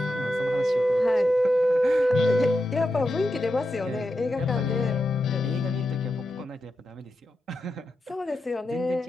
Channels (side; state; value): both; normal; correlation 0.88